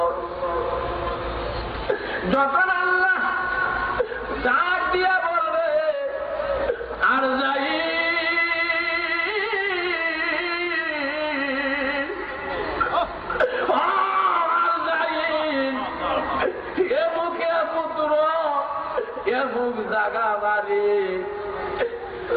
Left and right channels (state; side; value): identical; both; correlation 1.00